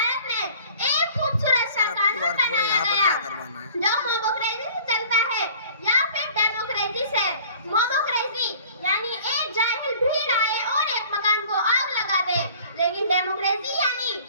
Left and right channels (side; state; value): both; inverted; correlation -0.49